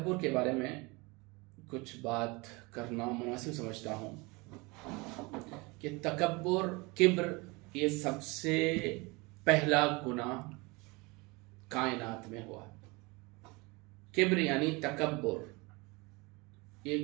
کے بارے میں کچھ بات کرنا مناسب سمجھتا ہوں کہ تکبر، کبر، یہ سب سے پہلا گناہ کائنات میں ہوا. کبر یعنی تکبر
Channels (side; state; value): left; quieter; 25.9 dB